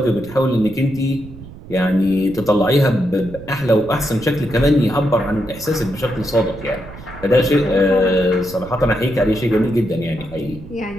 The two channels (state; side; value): noise; right; rumble, 16 dB below the sound